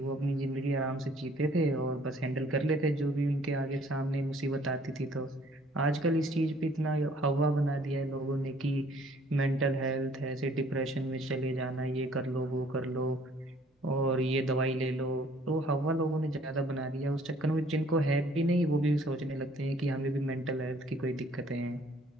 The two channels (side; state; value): both; normal; correlation 0.58